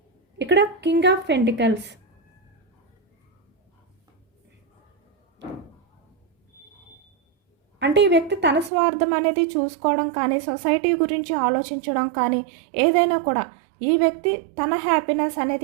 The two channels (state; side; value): drops out; left; at 8.7 s